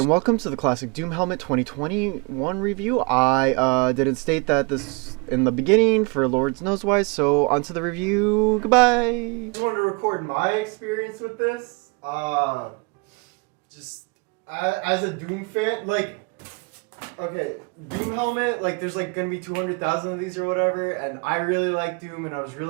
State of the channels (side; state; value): left; quieter; 31.2 dB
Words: welcome to the Classic Doom Helmet 2021 review. I didn't state that this in the beginning for Lords knows why, so on to the review. Goodbye. I just wanted to record my experience with this. Just as a Doom fan, like, okay, Doom Helmet, like, there's like gonna be 200,000 of these or whatever, and I really like Doom, and I was